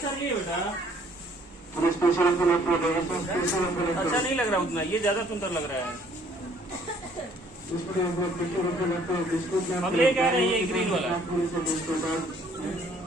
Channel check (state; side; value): normal; both; correlation 0.61